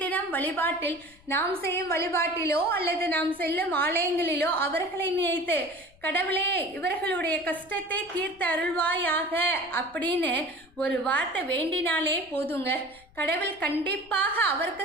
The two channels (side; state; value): left; noise; rumble, 27 dB below the sound